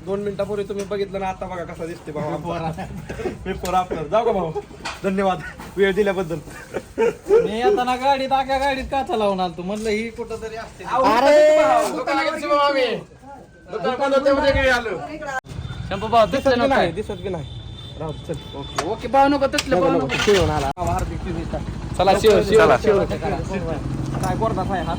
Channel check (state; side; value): identical; both; correlation 1.00